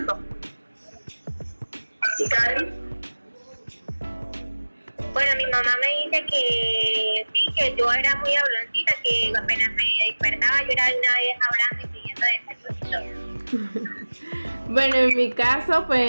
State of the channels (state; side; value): inverted; both; correlation -1.00